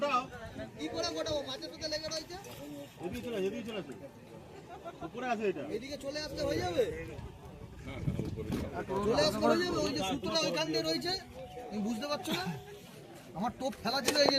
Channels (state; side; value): identical; both; correlation 1.00